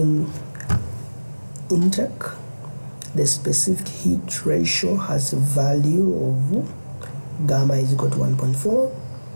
intake, the specific heat ratio has a value of gamma is equal to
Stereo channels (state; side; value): inverted; both; correlation -1.00